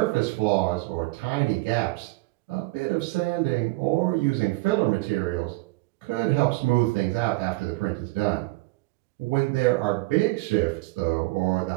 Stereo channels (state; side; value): quieter; left; 22.9 dB